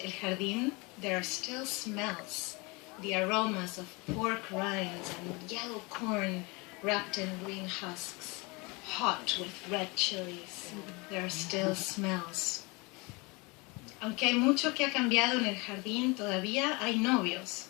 El Jardín, there are still smells. The aromas of pork rinds and yellow corn wrapped in green husks, hot with red chilies. There are still smells. Aunque hay mucho que ha cambiado en el jardín, todavía hay novios.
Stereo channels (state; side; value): quieter; right; 27.1 dB